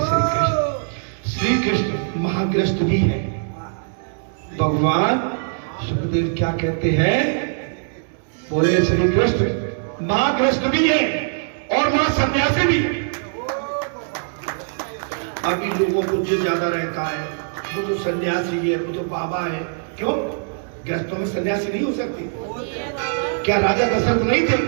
श्री कृष्ण महाग्रस्त भी है। भगवान सुखदेव क्या कहते हैं? बोले श्री कृष्ण महाग्रस्त भी है और महासन्यासी भी है। अभी लोगों को जो ज्यादा रहता है वो जो सन्यासी है, वो जो बाबा है। क्यों? ग्रस्तों में सन्यासी नहीं हो सकती? क्या राजा दशरथ नहीं थे?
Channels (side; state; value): left; silent; digital silence